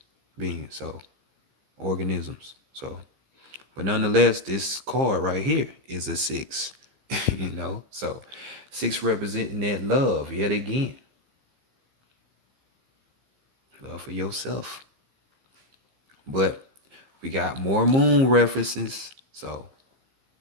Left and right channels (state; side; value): late; left; 15 ms